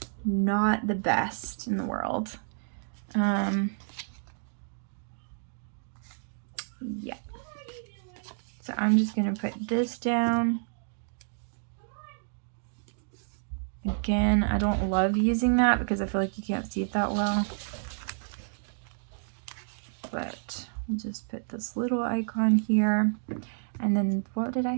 not the best in the world. Yeah. So I'm just gonna put this down. Again, I don't love using that because I feel like you can't see it that well. But we'll just put this little icon here. And then what did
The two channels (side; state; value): left; silent; digital silence